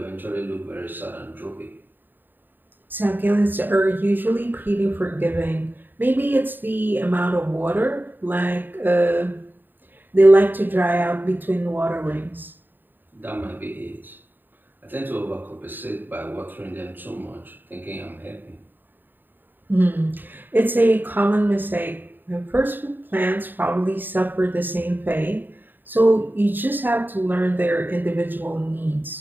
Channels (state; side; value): late; left; 0.092 ms